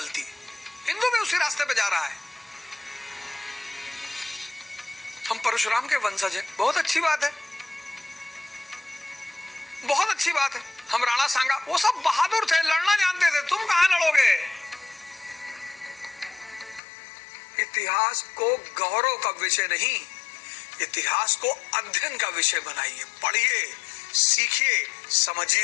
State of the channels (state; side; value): drops out; right; at 16.8 s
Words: हिंदू भी उसी रास्ते पे जा रहा है। हम परशुराम के वंशज हैं, बहुत अच्छी बात है, बहुत अच्छी बात है। हम राणा सांगा, वो सब बहादुर थे, लड़ना जानते थे, तुम कहां लड़ोगे। इतिहास को गौरव का विषय नहीं, इतिहास को अध्ययन का विषय बनाइए। पढ़िए, सीखिए,